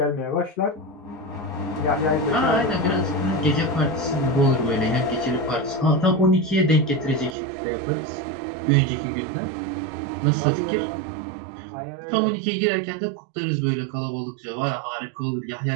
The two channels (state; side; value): drops out; left; at 7.4 s